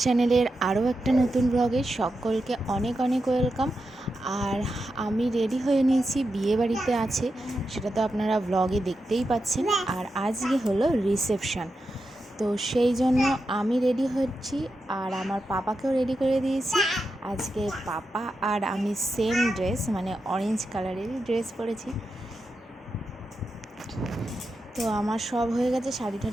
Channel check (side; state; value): both; normal; correlation 0.88